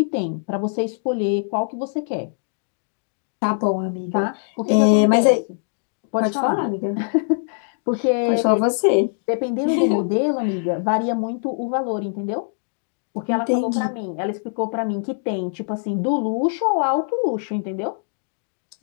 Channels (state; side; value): silent; right; digital silence